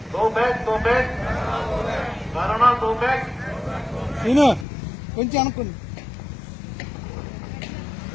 go back go back corona go back. Scene కొంచెం అనుకోండి.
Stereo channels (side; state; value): right; drops out; at 4.7 s